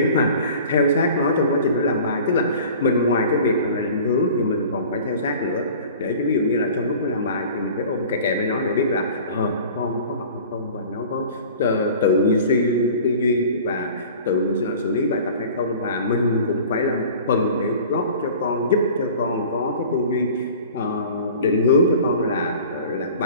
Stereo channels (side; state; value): both; inverted; correlation -0.43